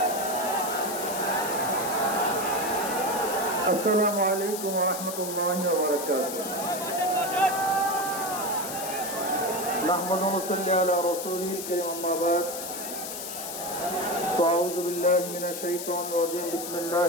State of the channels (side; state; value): left; noise; hiss, 7 dB below the sound